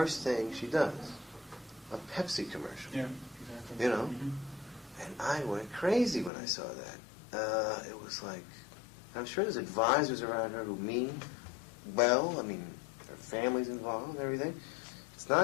thing she does? A Pepsi commercial. Yeah, exactly. You know? Mm-hmm. And I went crazy when I saw that. It was like, I'm sure there's advisors around her who mean well. I mean, her family's involved and everything. It's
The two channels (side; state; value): right; drops out; at 6.3 s